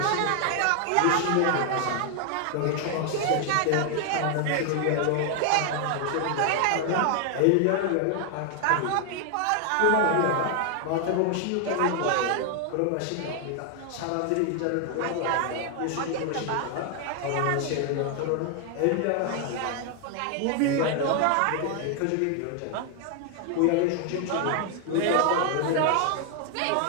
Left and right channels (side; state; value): both; different; correlation 0.00